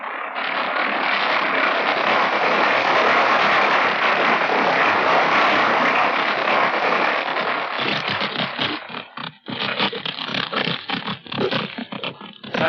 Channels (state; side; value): identical; both; correlation 1.00